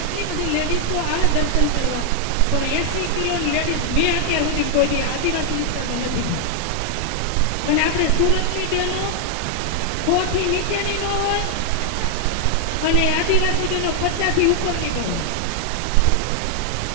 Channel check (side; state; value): both; different; correlation 0.00